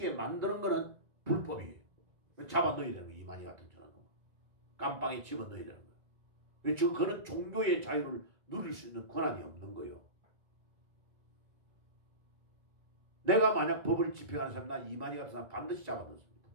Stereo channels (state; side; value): late; left; 1.9 ms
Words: 만드는 것은 불법이에요. 잡아 넣어야 되는 거예요. 이만희 같은 저는. 깜빵에 집어넣어야 되는 거예요. 지금 그는 종교의 자유를 누릴 수 있는 권한이 없는 거예요. 내가 만약 법을 집행하는 사람, 나 이만희 같은 사람 반드시 잡아 넣습니다.